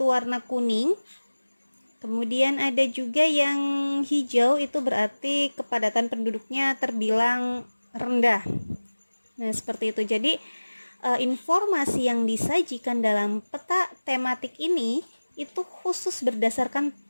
warna kuning. Kemudian ada juga yang hijau, itu berarti kepadatan penduduknya terbilang rendah. Nah, seperti itu. Jadi informasi yang disajikan dalam peta tematik ini itu khusus berdasarkan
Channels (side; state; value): both; inverted; correlation -1.00